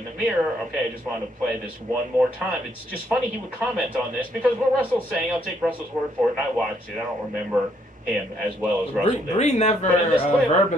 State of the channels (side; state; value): both; normal; correlation 0.71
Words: the mirror." Okay, I just wanted to play this one more time. It's just funny he would comment on this because what Russell's saying, I'll take Russell's word for it, and I watched it. I don't remember him as well as Russell did. Bree never